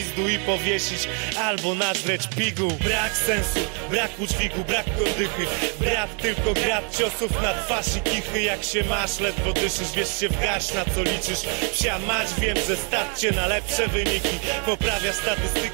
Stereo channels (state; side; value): quieter; left; 38.3 dB